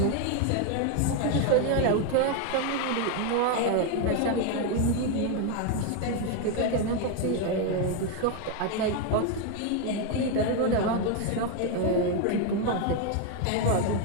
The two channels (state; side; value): different; both; correlation 0.01